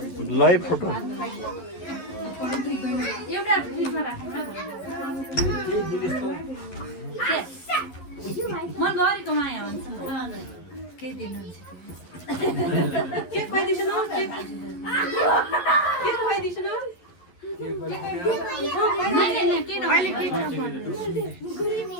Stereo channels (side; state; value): right; late; 11 ms